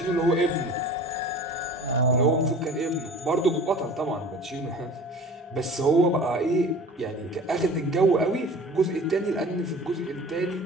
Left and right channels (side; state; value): both; normal; correlation 0.42